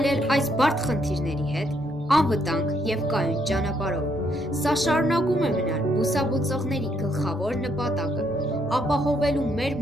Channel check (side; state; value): both; normal; correlation 0.73